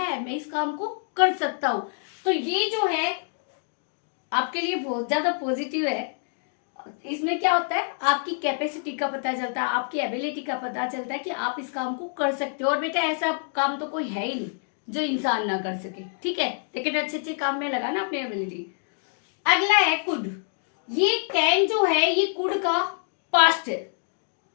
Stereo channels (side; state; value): right; silent; 61 dB below the other